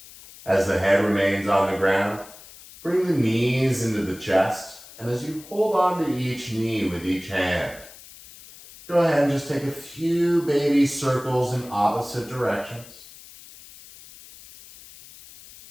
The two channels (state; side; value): noise; left; hiss, 19 dB below the sound